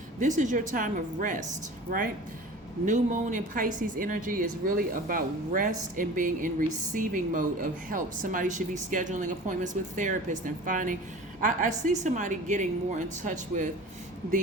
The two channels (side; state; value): both; normal; correlation 0.39